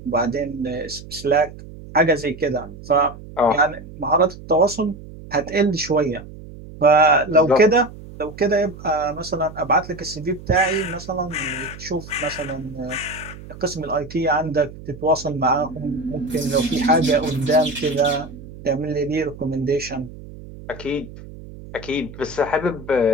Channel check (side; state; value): right; noise; hum, 15 dB below the sound